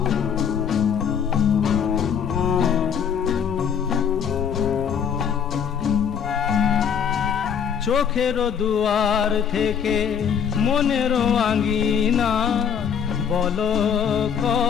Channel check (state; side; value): quieter; right; 7.8 dB